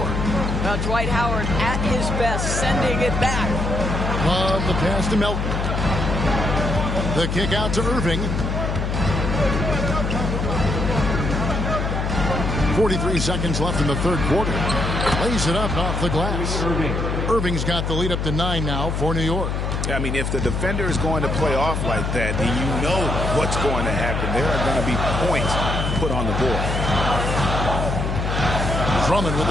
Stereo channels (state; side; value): noise; left; hum, 1 dB below the sound